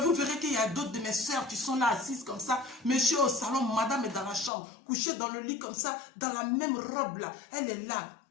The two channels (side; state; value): right; drops out; at 4.5 s